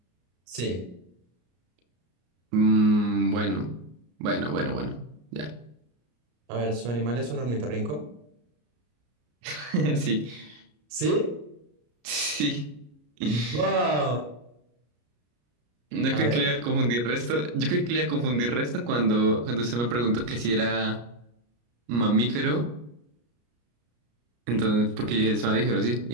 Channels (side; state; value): left; late; 33 ms